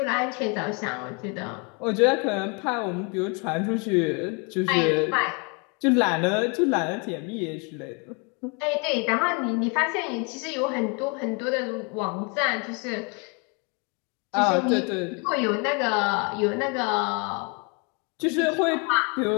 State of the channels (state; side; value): quieter; right; 33.3 dB